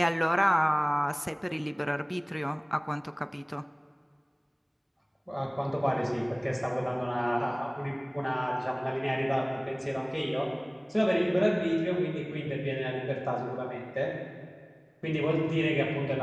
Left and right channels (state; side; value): identical; both; correlation 1.00